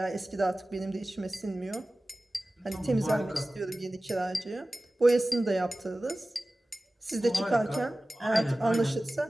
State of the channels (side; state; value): both; normal; correlation 0.96